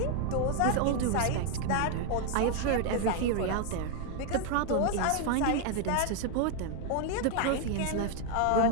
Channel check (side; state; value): both; different; correlation 0.01